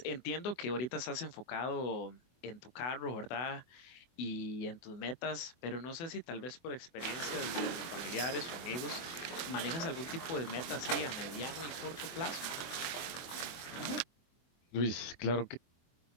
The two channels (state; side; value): late; right; 24 ms